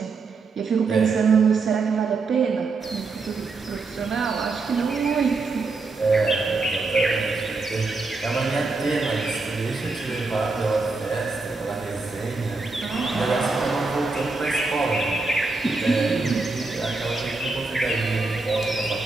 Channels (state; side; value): quieter; left; 3.9 dB